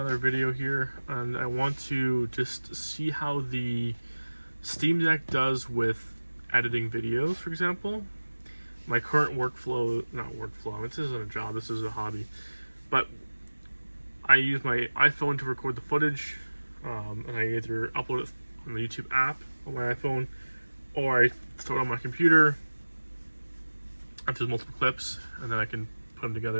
video here, and I want to just see how the Steam Deck does with editing videos, for example. My current workflow, this isn't a job, this is a hobby, but I use my iPhone to record the footage, and I either upload it on the YouTube app on my iPhone, or I throw it on my computer if there's multiple clips, and then I can put them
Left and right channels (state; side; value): inverted; both; correlation -1.00